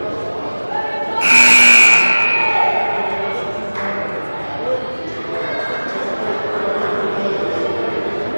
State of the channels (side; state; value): both; inverted; correlation -1.00